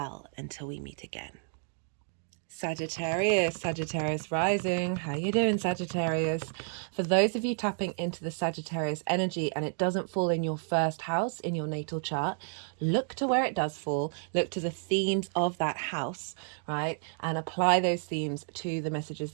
until we meet again. Sagittarius rising. How you doing, Sagittarius? For those of you tapping into the Sagittarius energy and it doesn't fall in your first house in your natal chart, look to where it does fall. Look to the themes of that house, right? And apply those themes to the messages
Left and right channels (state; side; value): silent; left; 57 dB below the other